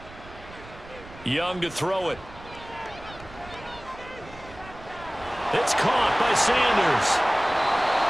Young to throw it. It's caught by Sanders.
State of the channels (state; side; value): noise; right; rumble, 18 dB below the sound